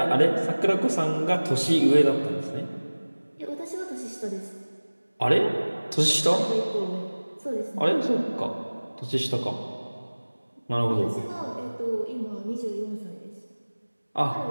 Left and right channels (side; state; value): both; inverted; correlation -1.00